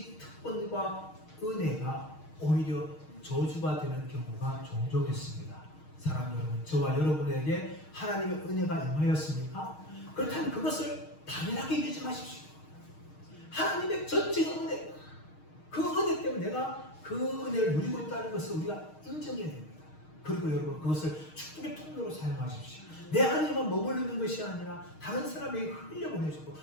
특권과 은혜가 오히려 저주가 되는 경우가 종종 있습니다. 사랑 여러분, 저와 여러분에게 하나님의 은혜가 임하였습니까? 그렇다면 그것을 당연하게 여기지 마십시오. 하나님의 전적인 은혜, 그 은혜 때문에 내가 그 은혜를 누리고 있다는 것을 우리가 인정해야 됩니다. 그리고 여러분, 그것을 축복의 통로로 사용하십시오. 내 안에만 머무르는 것이 아니라 다른 사람에게 흘려보내주고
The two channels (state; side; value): late; right; 6.4 ms